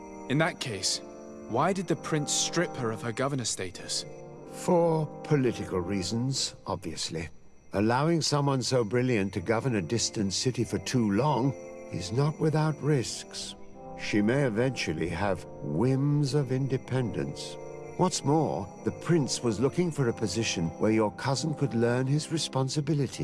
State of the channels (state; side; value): identical; both; correlation 1.00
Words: In that case, why did the prince strip her of her governor status? For political reasons, obviously. Allowing someone so brilliant to govern a distant city for too long is not without risks. She may eventually have whims of independence. What's more, the prince was looking for a position where your cousin could learn his